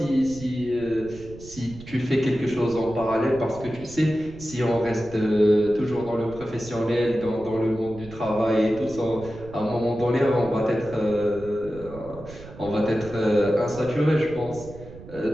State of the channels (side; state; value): right; noise; rumble, 16 dB below the sound